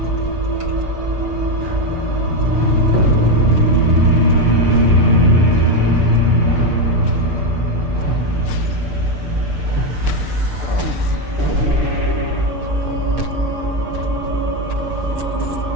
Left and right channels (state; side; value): late; left; 6.8 ms